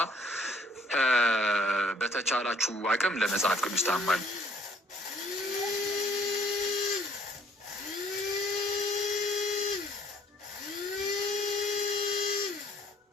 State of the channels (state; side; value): normal; both; correlation 0.60